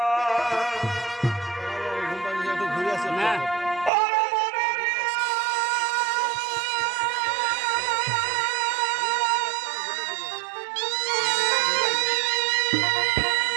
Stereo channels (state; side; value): drops out; left; at 3.9 s